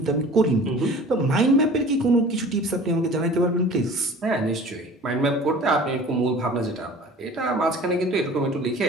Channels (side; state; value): both; normal; correlation 0.43